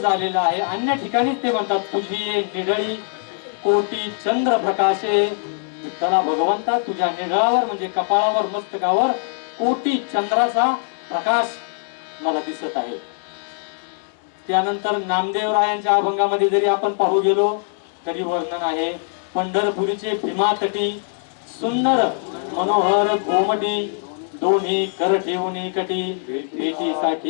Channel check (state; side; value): silent; right; 65 dB below the other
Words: आहे. अन्य ठिकाणी ते म्हणतात तुझी निढळी कोटी चंद्र प्रकाशे. विठ्ठला भगवंता तुझ्या निढळावर म्हणजे कपाळावर मस्तकावर कोटी चंद्राचा प्रकाश मला दिसत आहे. त्यानंतर नामदेवरायांच्या अभंगामध्ये जरी आपण पाहू गेलो तरी वर्णन आहे. पंढरपुरीचे भीमातटी सुंदर मनोहर गोमटी दोन्ही कर ठेवून कटी